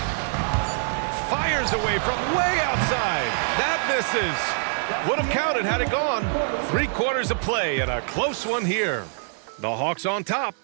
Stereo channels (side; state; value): left; silent; 62 dB below the other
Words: Fires away from way outside. That misses. Would have counted had it gone. 3 quarters of play and a close one here. The Hawks on top.